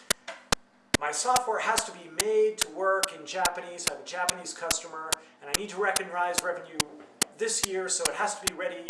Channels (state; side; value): identical; both; correlation 1.00